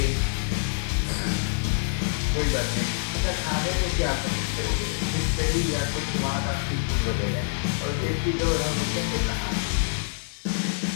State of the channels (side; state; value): right; silent; digital silence